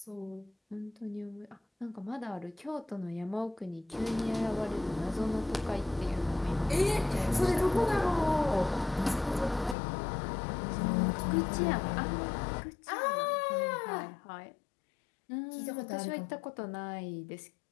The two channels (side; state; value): right; drops out; at 9.8 s